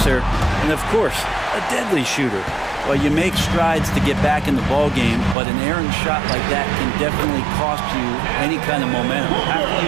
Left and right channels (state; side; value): drops out; left; at 5.4 s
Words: and of course, a deadly shooter. Well, you make strides to get back in the ball game, but an errant shot like that can definitely cost you any kind of momentum. You have to